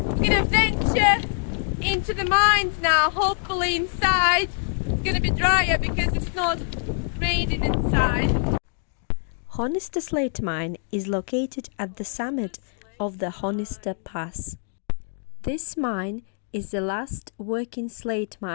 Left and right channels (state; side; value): silent; right; 62 dB below the other